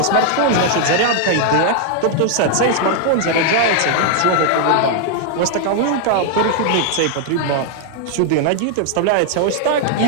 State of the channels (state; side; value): different; both; correlation 0.00